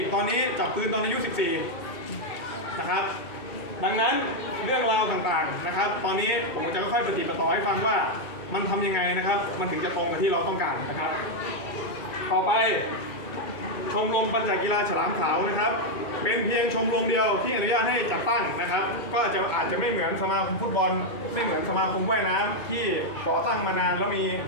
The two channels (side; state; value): right; late; 2.3 ms